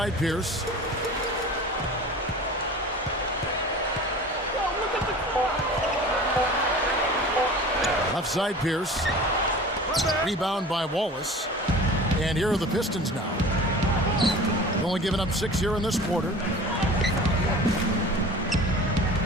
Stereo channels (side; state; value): both; normal; correlation 0.39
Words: Pierce. Left side Pierce. Rebound by Wallace. And here are the Pistons now. Only giving up 6 here in this quarter.